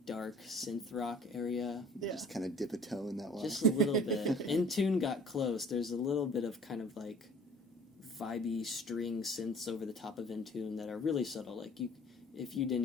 dark synth rock area. Yeah. Just kind of dip a toe in that one. Just a little bit. In Tune got close. There's a little bit of kind of like vibey string synths over the top of In Tune that are really subtle. Like if you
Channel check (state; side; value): normal; both; correlation 0.50